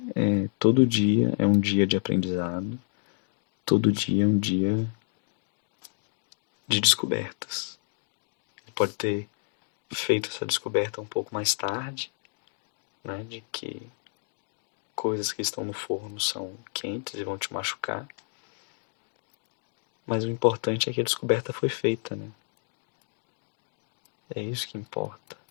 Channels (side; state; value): right; silent; 58 dB below the other